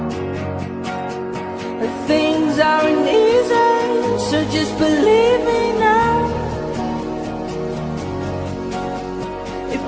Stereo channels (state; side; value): identical; both; correlation 1.00